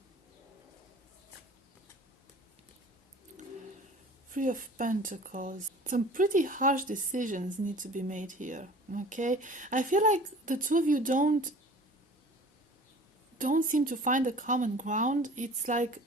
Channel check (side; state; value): both; normal; correlation 0.45